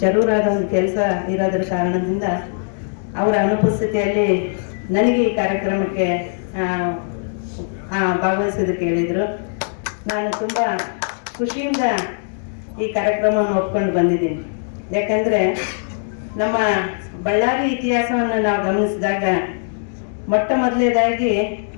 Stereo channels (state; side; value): silent; right; digital silence